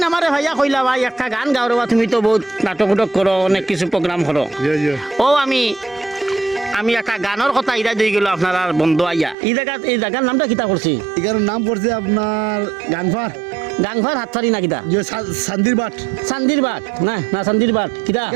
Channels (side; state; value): left; drops out; at 9.3 s